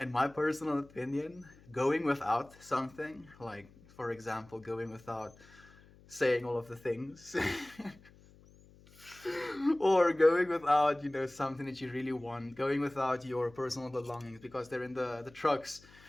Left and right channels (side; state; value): left; noise; hum, 25 dB below the sound